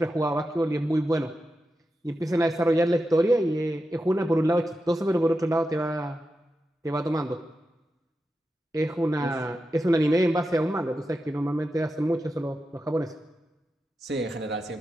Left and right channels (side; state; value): both; normal; correlation 0.90